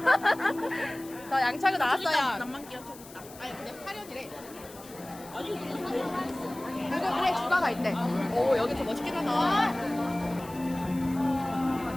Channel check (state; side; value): noise; left; hiss, 19 dB below the sound